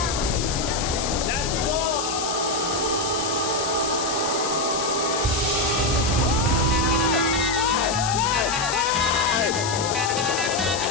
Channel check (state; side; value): noise; left; hiss, 5 dB below the sound